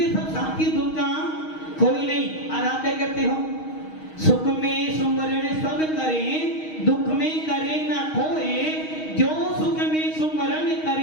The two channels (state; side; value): late; right; 6.4 ms